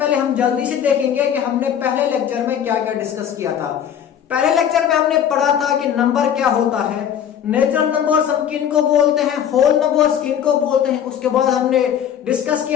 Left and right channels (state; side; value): quieter; right; 9.1 dB